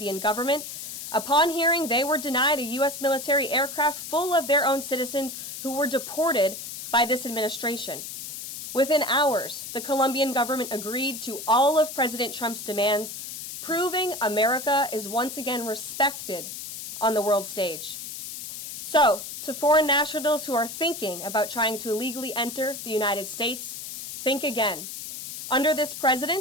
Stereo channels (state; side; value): noise; left; hiss, 9 dB below the sound